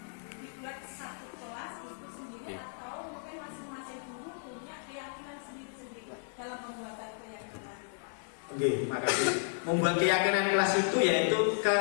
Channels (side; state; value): right; silent; digital silence